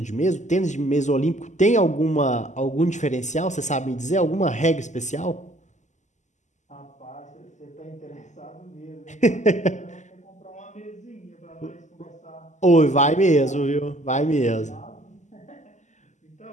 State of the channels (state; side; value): late; right; 0.34 ms